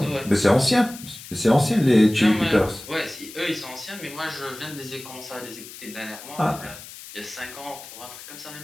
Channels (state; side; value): noise; left; hiss, 15 dB below the sound